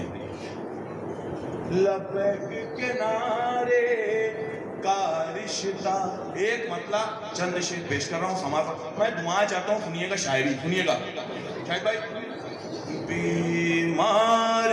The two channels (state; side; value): identical; both; correlation 1.00